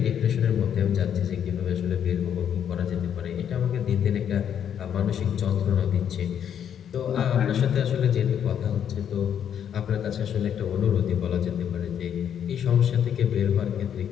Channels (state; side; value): quieter; right; 8.9 dB